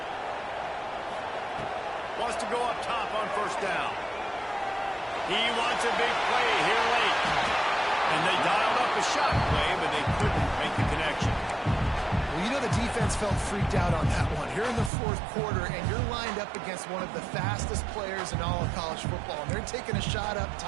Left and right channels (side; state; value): left; drops out; at 14.9 s